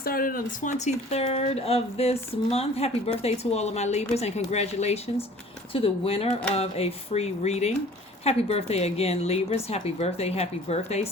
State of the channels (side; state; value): both; normal; correlation 0.49